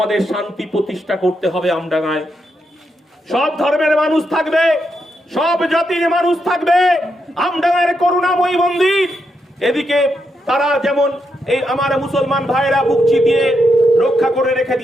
শান্তি প্রতিষ্ঠা করতে হবে আমডাঙ্গায়। সব ধর্মের মানুষ থাকবে, সব জাতির মানুষ থাকবে। আমডাঙ্গার করুণাময়ী মন্দির, এদিকে তারা যেমন এই আমার মুসলমান ভাইয়েরা বুকচি দিয়ে রক্ষা করে রেখে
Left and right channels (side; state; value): both; normal; correlation 0.82